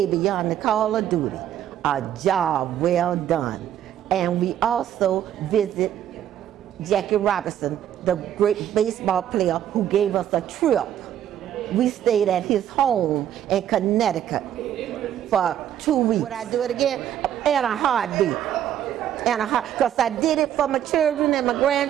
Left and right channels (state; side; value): quieter; left; 10.7 dB